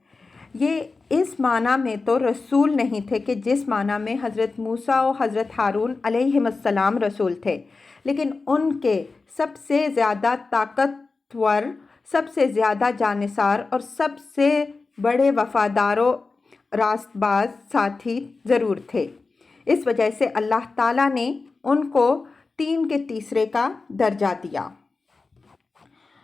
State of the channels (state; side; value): quieter; right; 4.0 dB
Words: یہ اس معنی میں تو رسول نہیں تھے کہ جس معنی میں حضرت موسیٰ و حضرت ہارون علیہم السلام رسول تھے، لیکن ان کے سب سے زیادہ طاقتور، سب سے زیادہ جانثار اور سب سے بڑے وفادار و راست باز ساتھی ضرور تھے۔ اس وجہ سے اللہ تعالیٰ نے ان کو 3 کے تیسرے کا درجہ دیا۔